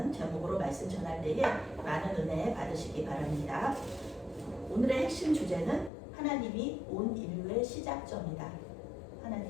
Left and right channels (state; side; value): drops out; right; at 5.9 s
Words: 제목으로 말씀 전할 때에 많은 은혜 받으시기 바랍니다. 오늘의 핵심 주제는 하나님이 온 인류의 시작점이다.